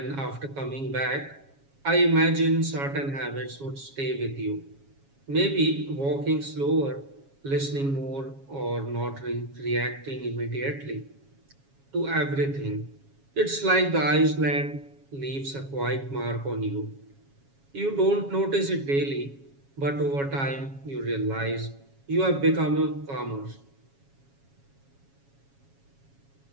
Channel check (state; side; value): late; left; 7.3 ms